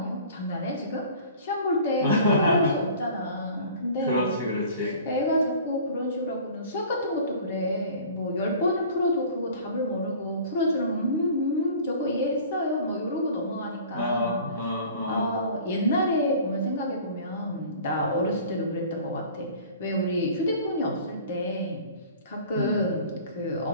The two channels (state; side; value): inverted; both; correlation -0.45